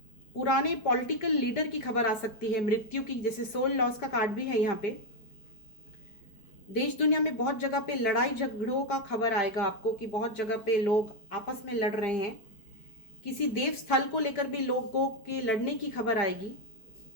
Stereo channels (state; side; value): late; right; 4.5 ms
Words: पुराने पॉलिटिकल लीडर की खबर आ सकती है, मृत्यु की, जैसे सोल लॉस का कार्ड भी है यहाँ पे। देश दुनिया में बहुत जगह पे लड़ाई झगड़ों का खबर आएगा आपको कि बहुत जगह पे लोग आपस में लड़ रहे हैं। किसी देव स्थल को लेकर भी लोगों के लड़ने की खबर आएगी